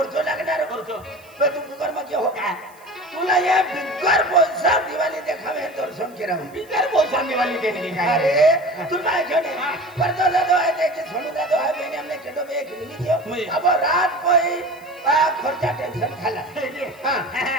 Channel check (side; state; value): right; noise; hiss, 28 dB below the sound